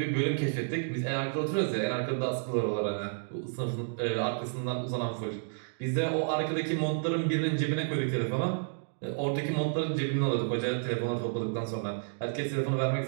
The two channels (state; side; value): silent; left; digital silence